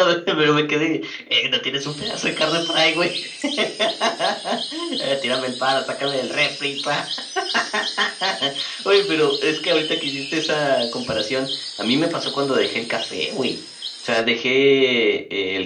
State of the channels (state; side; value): identical; both; correlation 1.00